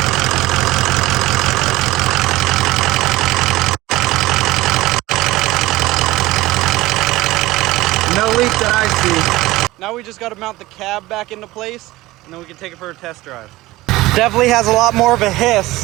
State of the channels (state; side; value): quieter; left; 18.5 dB